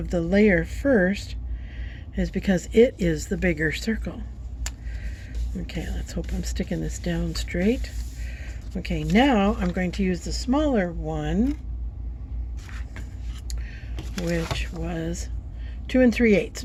the layer first is because it is the bigger circle. Okay, let's hope I'm sticking this down straight. Okay, now I'm going to use the smaller one, which was 2 3/8.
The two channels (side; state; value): both; identical; correlation 1.00